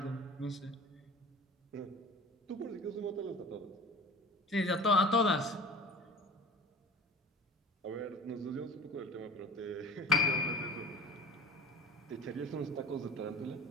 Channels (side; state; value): both; normal; correlation 0.37